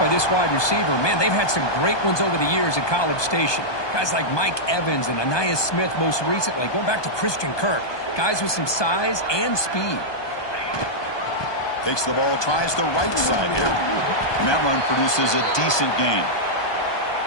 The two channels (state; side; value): late; right; 1.2 ms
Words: this wide receiver. Man, they've had some great ones over the years at College Station. Guys like Mike Evans and Anais Smith most recently, going back to Christian Kirk. Guys with some size and speed. Takes the ball, tries the right side here. And that run produces a decent gain.